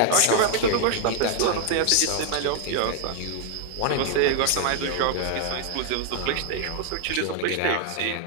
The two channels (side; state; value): both; different; correlation 0.00